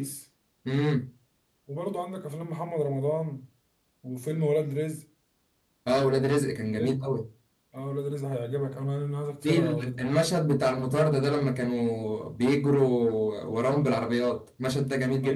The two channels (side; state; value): both; identical; correlation 1.00